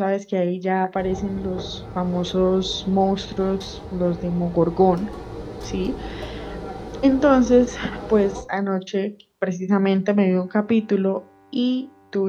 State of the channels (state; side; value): identical; both; correlation 1.00